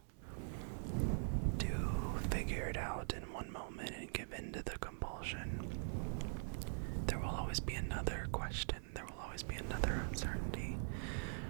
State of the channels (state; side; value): silent; left; digital silence